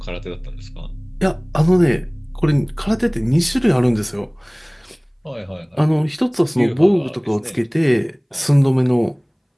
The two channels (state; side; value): identical; both; correlation 1.00